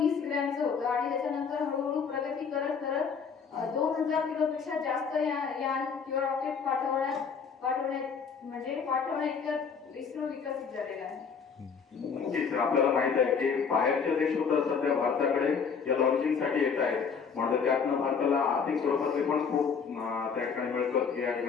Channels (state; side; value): quieter; right; 6.0 dB